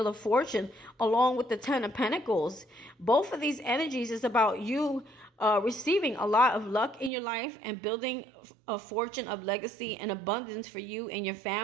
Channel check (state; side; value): drops out; left; at 7.1 s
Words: of Fortune along with the 10 of Pentacles. Both of these energies is about you receiving a lot of luck in your life and building a fortune of legacy and abundance for you and your